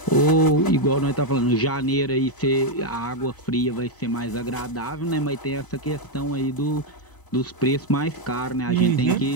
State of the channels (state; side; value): late; right; 1.0 ms